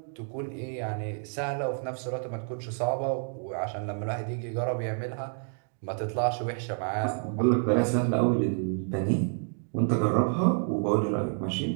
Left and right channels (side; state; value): left; silent; 59 dB below the other